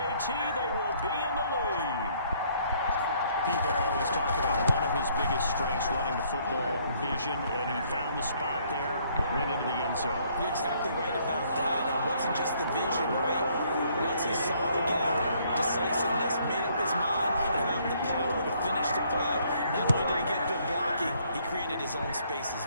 they will be in the lead. People always talk about one of his biggest strengths, running the football, vision, and he found the spot there, went into the end zone. You're exactly right about that. It wasn't just the vision, right? Once he saw the gap, decisiveness, made up his mind, and about the power to finish the play. Not only did he get good blocking, he created his own space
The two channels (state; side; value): inverted; both; correlation -0.65